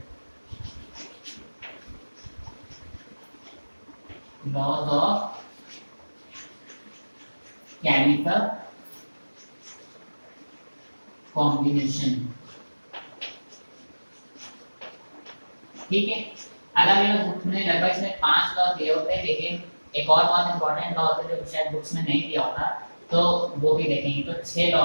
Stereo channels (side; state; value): both; inverted; correlation -1.00